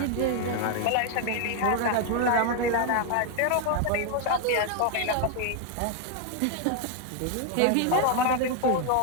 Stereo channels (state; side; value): different; both; correlation 0.01